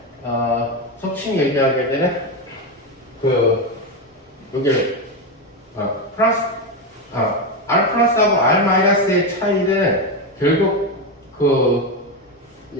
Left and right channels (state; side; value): normal; both; correlation 0.12